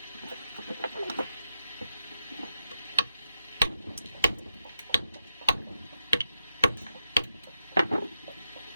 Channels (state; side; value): inverted; both; correlation -0.85